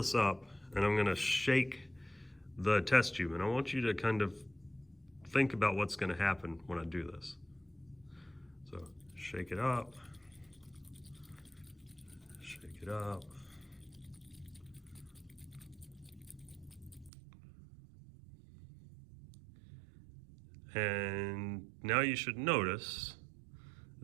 up and I'm going to shake the test tube, and I want you to kind of think about what's going to happen when I do this. So shake it up, shake it up. And now you should notice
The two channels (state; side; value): drops out; left; at 17.1 s